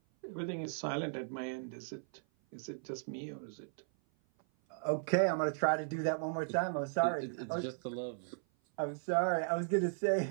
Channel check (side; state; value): left; silent; 53 dB below the other